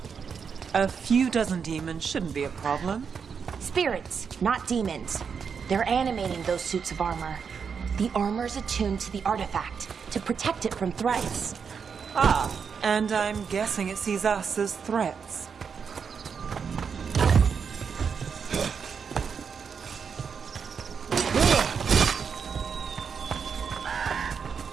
A few dozen demons shouldn't be a problem. Spirits, not demons. They're animating those suits of armor. The armor's attuned to the artifact, to protect it from threats. Ah, and I'm guessing it sees us as threats.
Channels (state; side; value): quieter; left; 6.3 dB